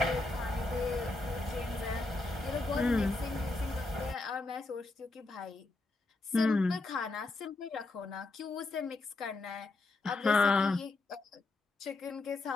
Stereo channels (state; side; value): quieter; right; 3.2 dB